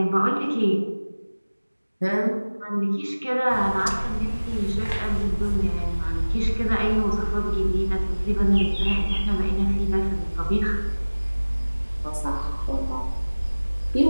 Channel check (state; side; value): inverted; both; correlation -1.00